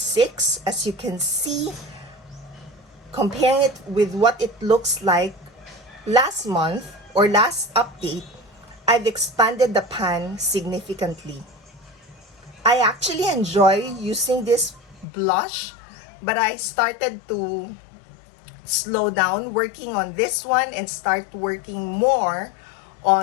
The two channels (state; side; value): drops out; right; at 15.1 s